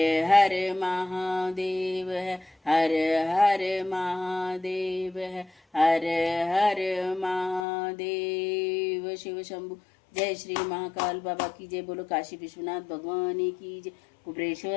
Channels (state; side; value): drops out; right; at 7.7 s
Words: हर महादेव है, हर हर महादेव है, हर हर महादेव। शिव शंभु। जय श्री महाकाल बाबा की जय। बोलो काशी विश्वनाथ भगवान की जय,